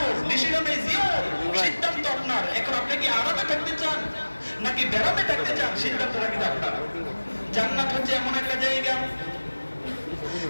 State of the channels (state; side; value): inverted; both; correlation -1.00